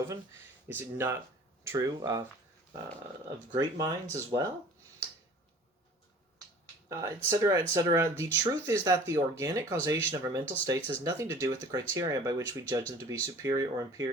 Is it not true of great minds as well? etc., etc. The truth is that the organic causation of our mental states has nothing to do with the criteria by which we judge them to be superior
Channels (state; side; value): normal; both; correlation 0.47